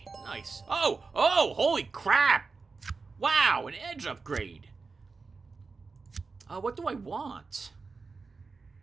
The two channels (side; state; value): left; quieter; 4.4 dB